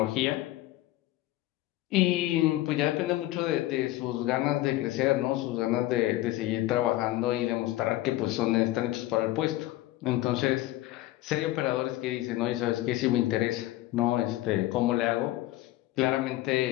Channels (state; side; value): quieter; right; 16.4 dB